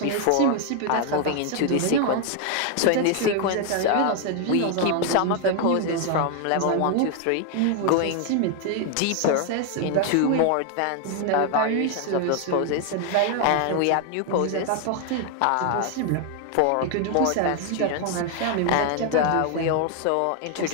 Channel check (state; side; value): different; both; correlation 0.00